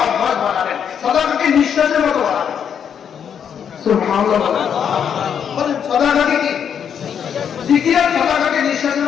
অভ্যাস বানাবেন সালাতকে নিঃশ্বাসের মতো বানাবেন সুবহানাল্লাহ বলেন সালাতকে কি জিকিরের সালাতকে নিঃশ্বাসের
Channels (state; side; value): quieter; right; 8.0 dB